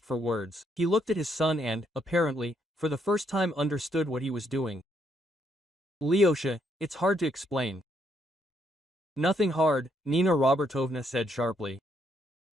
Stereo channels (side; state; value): both; normal; correlation 0.74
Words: for words. He looked at his son and, apparently, for the first time understood what he was doing. Lyosha, it's hard to explain. Nothing hard, Nina Robertovna said sharply.